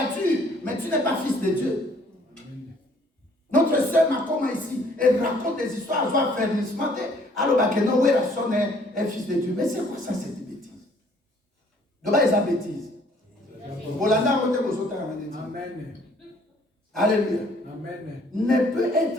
mais tu n'es pas fils de Dieu. Notre sœur Makoma ici, elle raconte des histoires, elle va faire ce matin. Alors, non, oui, la sonne est fils de Dieu. Mais c'est quoi ça, cette bêtise? De bas, ils ont bêtise. Amen. Alléluia. Amen. Ne peut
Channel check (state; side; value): normal; both; correlation 0.60